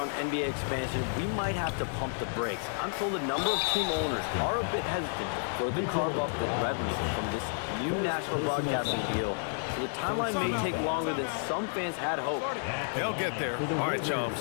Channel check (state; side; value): silent; right; digital silence